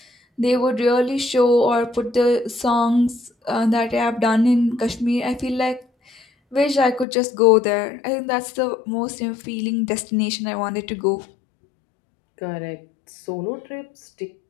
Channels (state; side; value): drops out; right; at 7.1 s